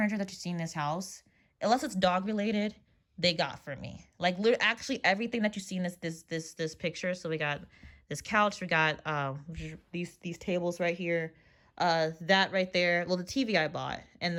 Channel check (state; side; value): identical; both; correlation 1.00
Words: that you see in this house, unless it's dog related, they got for me. Like actually everything that you see in this picture. So we got this couch, we got these tables right here, that right there. Well, the TV I bought and